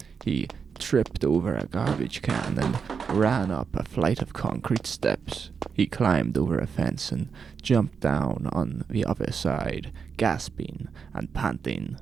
He tripped over a garbage can and ran up a flight of concrete steps. He climbed over a fence and jumped down on the other side, gasping and panting.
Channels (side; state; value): left; quieter; 6.1 dB